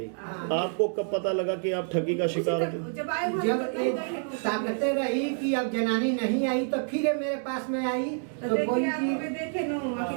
आपको कब पता लगा कि आप ठगी का शिकार थे? जब ताकते रही कि अब जनानी नहीं आई तो फिर मेरे पास में आई तो बोली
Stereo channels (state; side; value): silent; left; 59 dB below the other